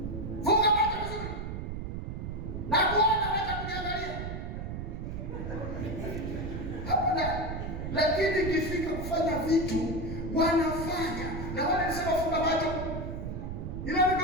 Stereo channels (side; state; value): right; noise; rumble, 5 dB below the sound